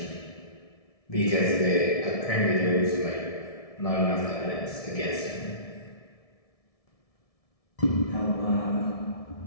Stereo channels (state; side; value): late; right; 1.7 ms